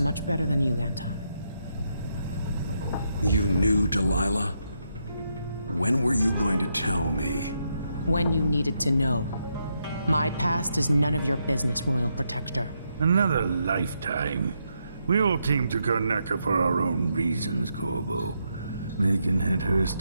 better than you, Anton. You knew Delilah? When were you going to tell me? When you needed to know. My past is none of your business, Royal Protector. Another lifetime. We all came to Karnaca for our own reasons, Corvo. Megan had hers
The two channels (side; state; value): both; inverted; correlation -0.80